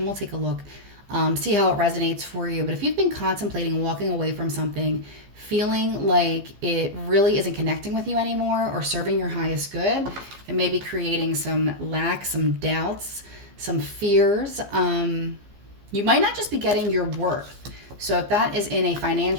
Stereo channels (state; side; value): late; left; 15 ms